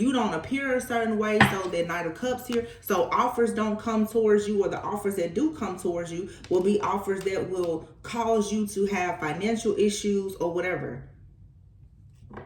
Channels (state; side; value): identical; both; correlation 1.00